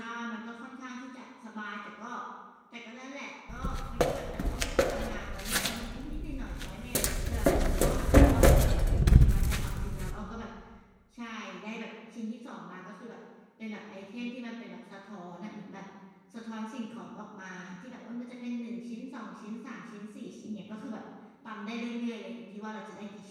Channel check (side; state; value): both; identical; correlation 1.00